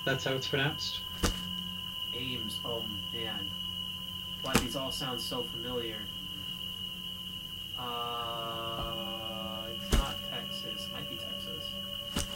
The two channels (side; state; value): both; identical; correlation 1.00